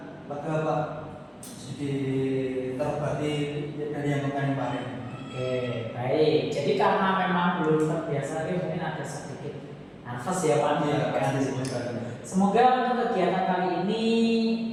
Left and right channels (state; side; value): identical; both; correlation 1.00